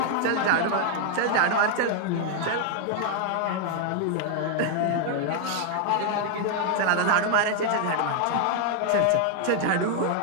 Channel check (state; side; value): different; both; correlation 0.00